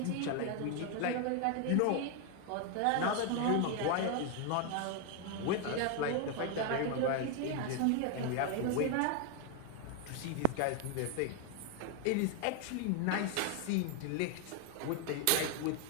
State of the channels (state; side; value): different; both; correlation 0.01